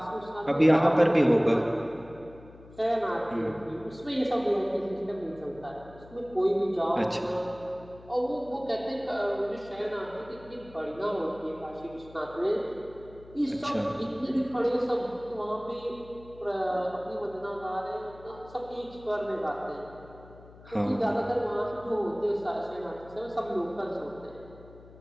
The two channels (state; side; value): noise; left; hum, 20 dB below the sound